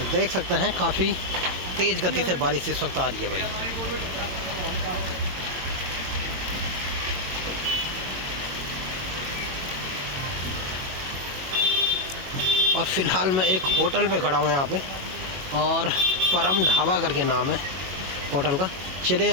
देख सकते हैं काफ़ी तेज़ गति से बारिश इस वक्त आ रही है भाई। और फिलहाल मैं एक होटल पे खड़ा हूँ यहाँ पे, और परम ढाबा करके नाम है होटल का। चलिए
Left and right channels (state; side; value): late; left; 22 ms